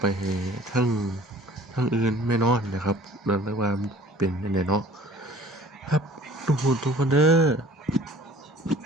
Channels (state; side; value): normal; both; correlation 0.50